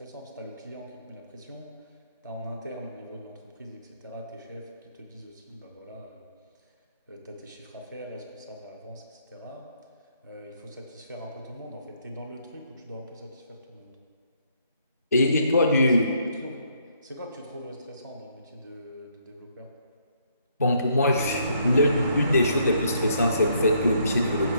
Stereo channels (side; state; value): both; inverted; correlation -0.70